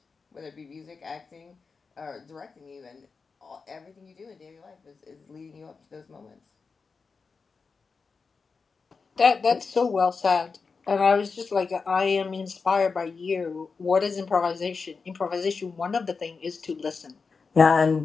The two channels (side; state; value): right; quieter; 4.8 dB